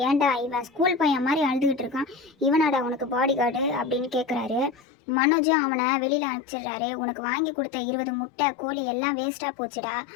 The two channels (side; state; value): right; drops out; at 4.8 s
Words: ஏன்டா இவன் ஸ்கூல் பையன் மாதிரி அழுதுகிட்டு இருக்கான், இவனாடா உனக்கு பாடி கார்டு அப்படின்னு கேட்குறாரு. மனோஜும் அவனை வெளியில் அனுப்பிச்சிடுறாரு. உனக்கு வாங்கி கொடுத்த 20 முட்டை கோழி எல்லாம் வேஸ்ட்டாக போச்சுடா